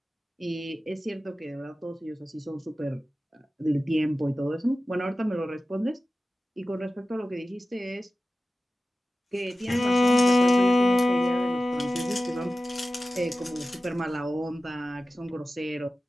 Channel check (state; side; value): normal; both; correlation 0.95